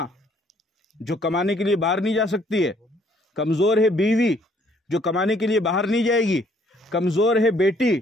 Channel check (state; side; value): normal; both; correlation 0.64